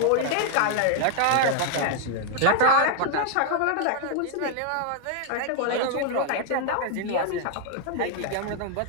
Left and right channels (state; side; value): different; both; correlation 0.00